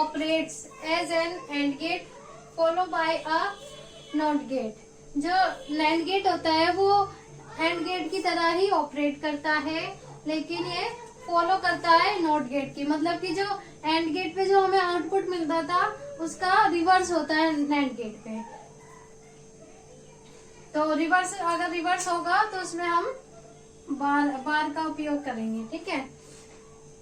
as an AND gate follow by a NOT gate. जो नैंड गेट होता है वो एंड गेट की तरह ही ऑपरेट करता है, लेकिन ये फॉलो करता है नॉट गेट की। मतलब कि जो एंड गेट पे जो हमें आउटपुट मिलता था उसका रिवर्स होता है नैंड गेट पे। तो रिवर्स, अगर रिवर्स होगा तो उसमें हम बार का उपयोग करेंगे। ठीक है,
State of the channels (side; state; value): both; identical; correlation 1.00